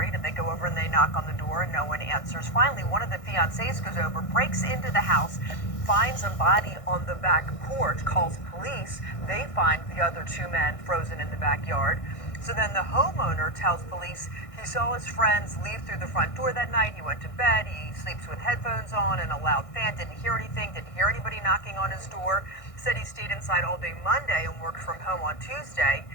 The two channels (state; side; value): late; right; 1.6 ms